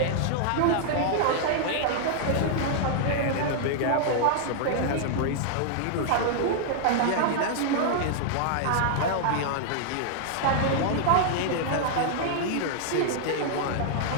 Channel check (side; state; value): both; different; correlation -0.01